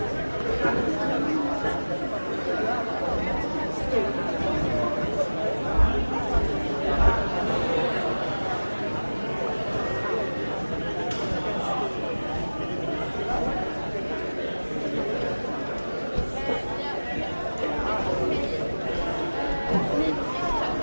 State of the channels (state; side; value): inverted; both; correlation -1.00